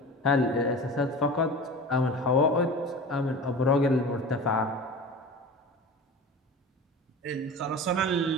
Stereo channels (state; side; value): normal; both; correlation 0.34